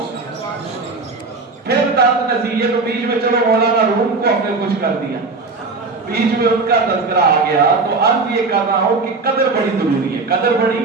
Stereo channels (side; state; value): left; quieter; 3.9 dB